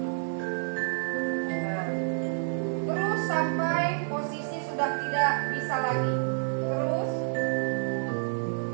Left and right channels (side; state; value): left; silent; digital silence